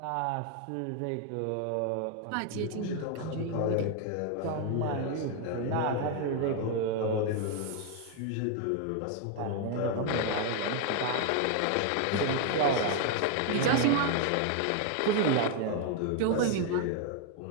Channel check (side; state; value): both; different; correlation 0.00